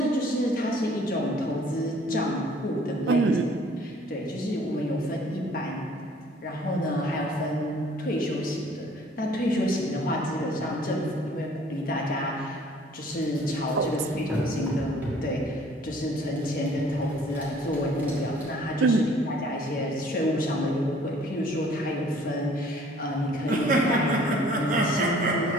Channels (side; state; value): both; normal; correlation 0.55